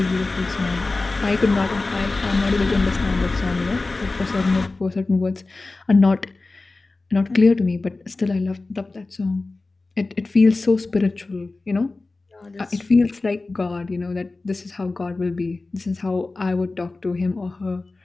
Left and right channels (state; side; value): quieter; right; 3.4 dB